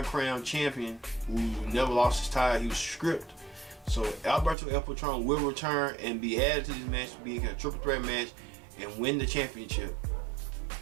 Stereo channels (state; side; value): drops out; left; at 4.5 s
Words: champion who never lost his title, he was stripped. So Alberto El Patron will return and be added to this match, being a triple threat match, and win the championship.